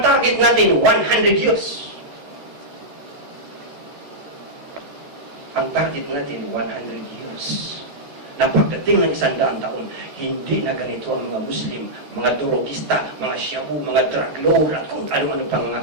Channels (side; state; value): left; late; 14 ms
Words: target natin 100 years. Ang target natin 100 years. Na pagdating ng 100 taon, hindi na ganito ang mga Muslim, mga durogista, mga shabu, mga drug lord, at kung ano-ano pang mga